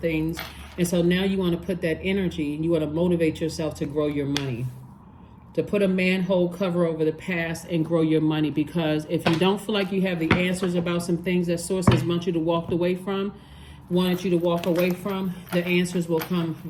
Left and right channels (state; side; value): identical; both; correlation 1.00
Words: And so now you want to put that energy, and you want to motivate yourself to grow your money. To put a manhole cover over the past and grow your money, because if you don't feel like you have the answers about some things that Source has wanted you to walk away from, the answers will come